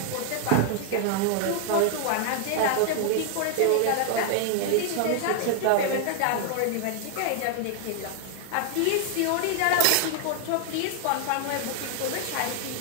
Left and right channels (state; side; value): different; both; correlation 0.00